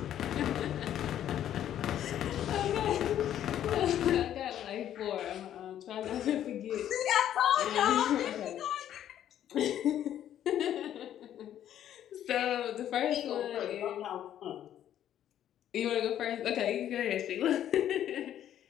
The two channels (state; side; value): quieter; right; 11.0 dB